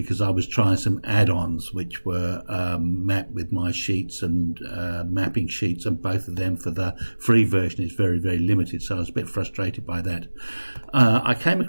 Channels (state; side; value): inverted; both; correlation -1.00